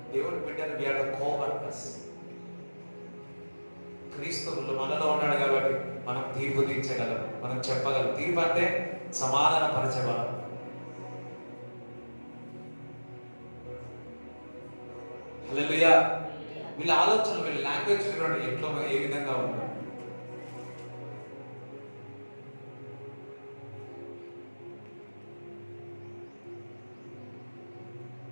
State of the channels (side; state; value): both; inverted; correlation -1.00